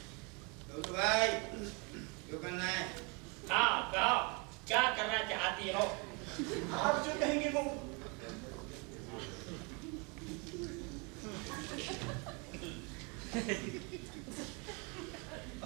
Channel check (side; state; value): left; quieter; 31.4 dB